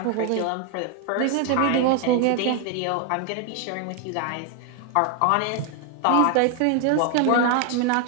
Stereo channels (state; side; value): different; both; correlation 0.00